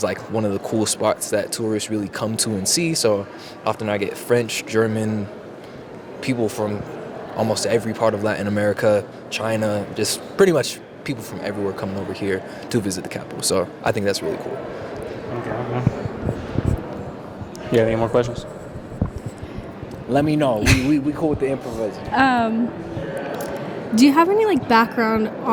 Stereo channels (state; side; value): identical; both; correlation 1.00